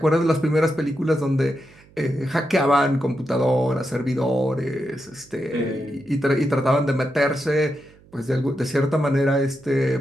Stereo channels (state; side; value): noise; right; hum, 27 dB below the sound